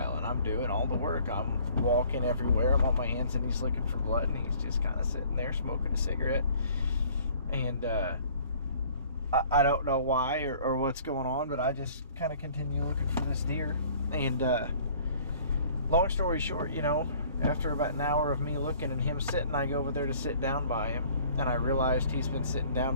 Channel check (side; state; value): both; inverted; correlation -0.53